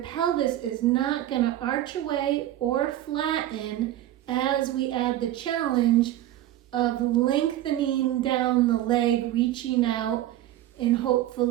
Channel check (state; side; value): quieter; left; 13.5 dB